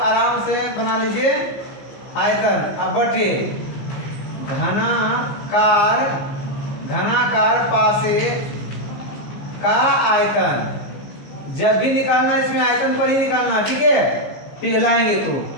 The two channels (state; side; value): late; right; 15 ms